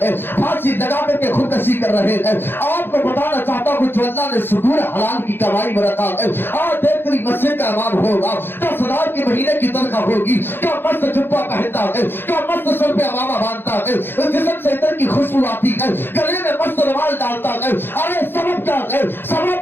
پھانسی لگا کر کے خودکشی کر رہے ہیں. آپ کو بتانا چاہتا ہوں کہ اللہ نے سکون حلال کی کمائی میں رکھا ہے. آج دیکھ کر مسجد کا امام ہوگا, 10,000 کی مہینے کی تنخواہ ہوگی, کیا مست جبہ پہنتا ہے, کیا مست سر پہ امامہ باندھتا ہے, جسم سے عطر کی خوشبو آتی ہے, گلے میں مست رومال ڈالتا ہے. ارے سبب کیا ہے؟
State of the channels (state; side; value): late; right; 0.10 ms